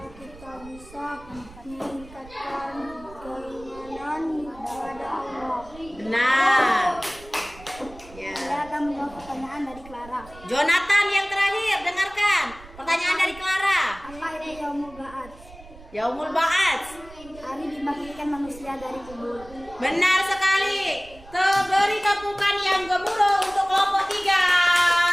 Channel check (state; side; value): noise; right; rumble, 20 dB below the sound